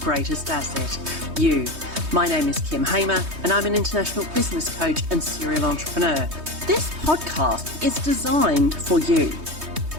asset, you. My name is Kim Hamer and I'm an international business coach and serial entrepreneur. This podcast is designed for you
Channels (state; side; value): late; left; 3.2 ms